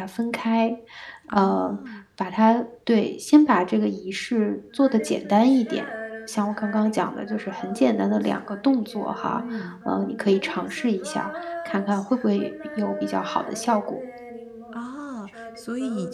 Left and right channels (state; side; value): identical; both; correlation 1.00